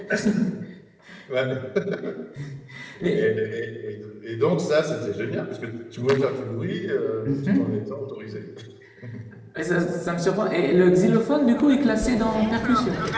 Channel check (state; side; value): identical; both; correlation 1.00